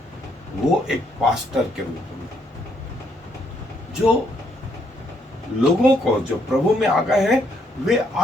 वो एक पास्टर के रूप में जो लोगों को जो प्रभु में आ गए हैं वे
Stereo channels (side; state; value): both; normal; correlation 0.72